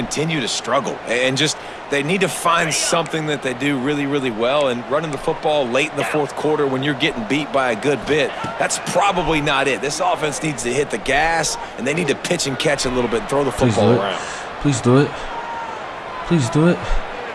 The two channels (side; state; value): both; identical; correlation 1.00